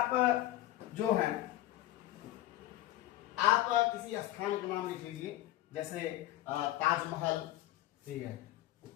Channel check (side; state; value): right; quieter; 15.0 dB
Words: जो है आप किसी स्थान का नाम लिख लीजिए, जैसे ताजमहल, ठीक है,